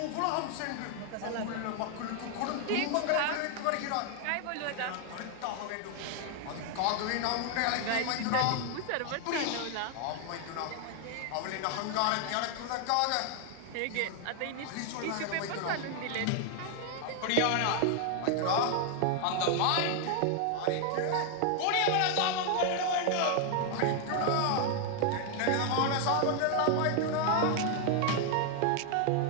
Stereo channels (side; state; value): both; different; correlation 0.00